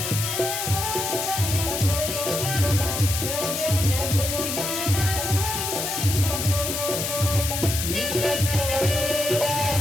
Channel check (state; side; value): noise; left; hiss, 2 dB below the sound